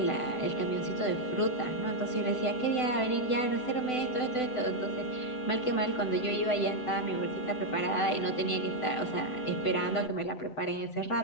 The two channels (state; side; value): late; right; 7.9 ms